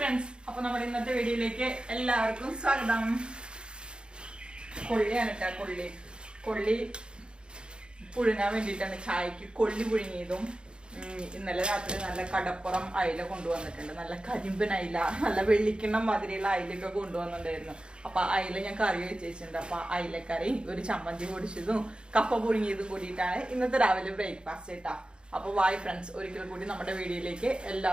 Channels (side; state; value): left; late; 0.052 ms